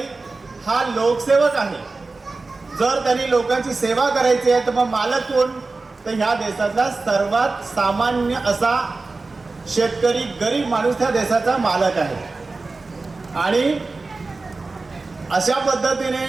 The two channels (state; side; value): quieter; left; 3.7 dB